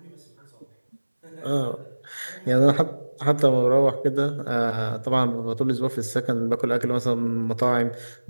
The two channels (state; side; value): inverted; both; correlation -1.00